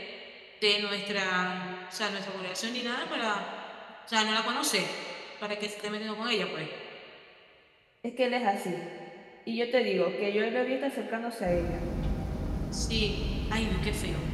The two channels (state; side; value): identical; both; correlation 1.00